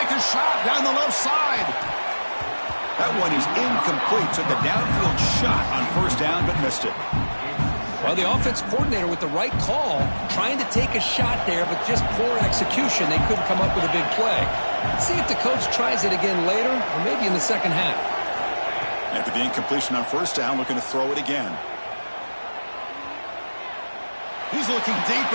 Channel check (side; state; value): both; inverted; correlation -1.00